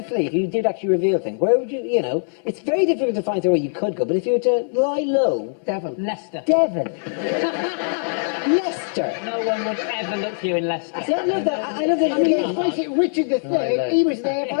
flee, if you did actually reveal things, where would you, you know, it's very difficult to find where you could go, but if you were to lie low... Devon. Leicester. Devon. Leicester. No one would ever look for you in Leicester. See, I love that. I love that. Let's face it, Richard III, he was there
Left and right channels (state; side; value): silent; right; 64 dB below the other